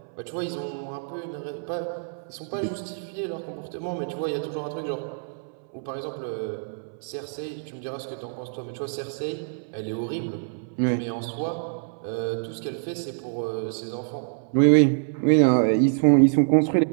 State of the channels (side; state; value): left; silent; 61 dB below the other